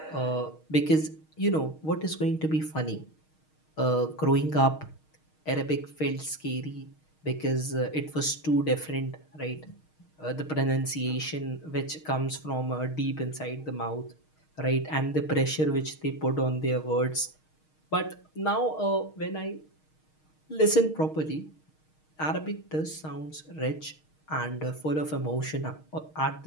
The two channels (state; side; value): late; right; 6.4 ms